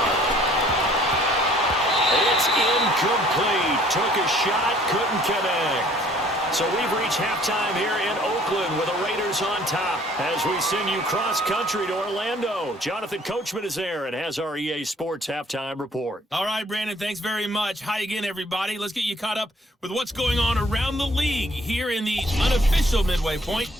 It's incomplete. Took a shot, couldn't connect. So we've reached halftime here in Oakland with the Raiders on top as we send you cross-country to Orlando. Jonathan Coachman is there and has our EA Sports halftime report. All right, Brandon, thanks very much. Hi again, everybody. Let's get you caught up with what's going on around the league here in the unofficial midway point,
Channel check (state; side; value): normal; both; correlation 0.58